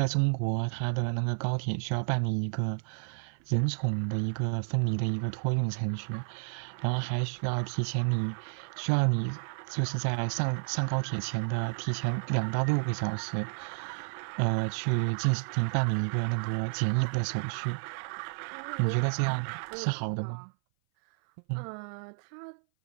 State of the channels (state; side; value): silent; left; 57 dB below the other